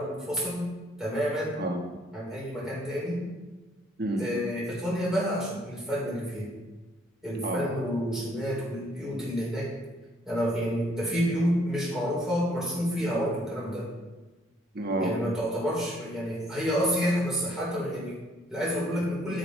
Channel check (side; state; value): both; normal; correlation 0.65